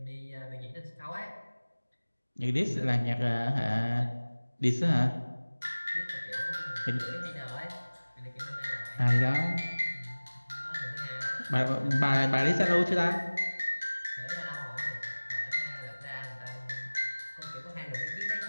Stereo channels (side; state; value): both; inverted; correlation -1.00